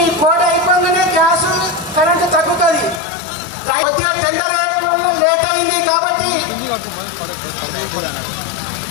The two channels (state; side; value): drops out; right; at 3.0 s